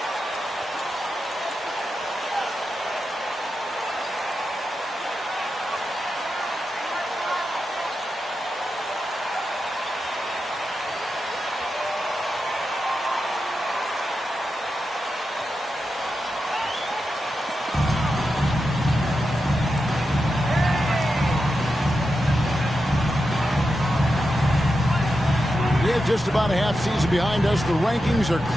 Just about a half season behind us. The rankings are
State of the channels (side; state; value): both; normal; correlation 0.89